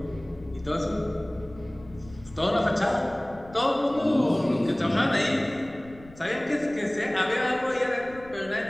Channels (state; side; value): noise; left; rumble, 21 dB below the sound